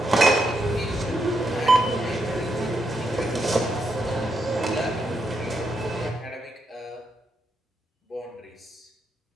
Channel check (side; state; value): both; normal; correlation 0.81